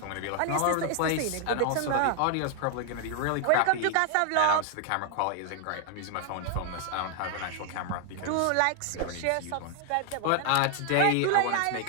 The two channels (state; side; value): different; both; correlation 0.00